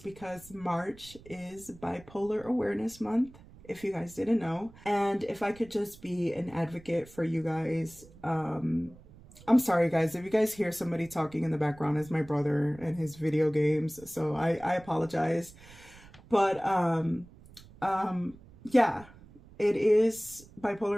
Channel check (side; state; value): right; noise; rumble, 22 dB below the sound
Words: March is Bipolar Awareness Month, if you guys didn't know. And if I could just be an advocate for you guys, I'm sorry guys, if you guys hear somebody talking in the background, it's my brother and his video games, so I apologize. But yeah, it is